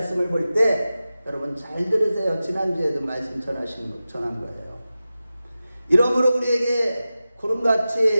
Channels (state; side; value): inverted; both; correlation -0.94